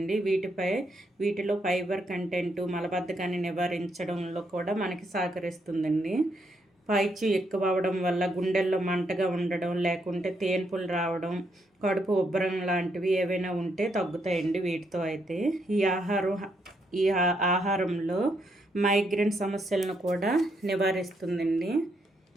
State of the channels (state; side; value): normal; both; correlation 0.76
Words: వీటిలో ఫైబర్ కంటెంట్ మలబద్ధకాన్ని నివారించడంలో కూడా మనకి సహకరిస్తుందండి. పైచ్యం ఎక్కువ అవడం వల్ల గుండెల్లో మంటగా ఉండడం, లేకుంటే తేన్పులు రావడం, కడుపు ఉబ్బరం లాంటివి ఏవైనా ఉంటే తగ్గుతాయండి వీటితో అయితే. ఈ ఆహారంలో మైగ్రేన్ సమస్యలను కూడా నివారిస్తుందండి.